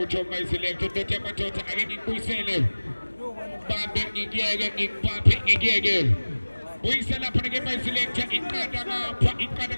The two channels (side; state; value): both; inverted; correlation -1.00